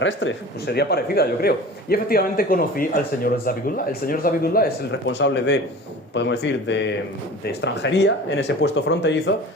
pues sería parecida, yo creo. Y efectivamente conocí al señor Zabidullah. El señor Zabidullah es el responsable de, podemos decir, de extranjería en ese puesto fronterizo,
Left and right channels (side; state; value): both; normal; correlation 0.39